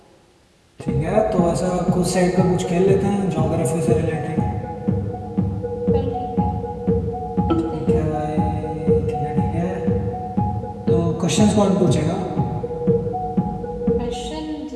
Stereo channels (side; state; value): both; identical; correlation 1.00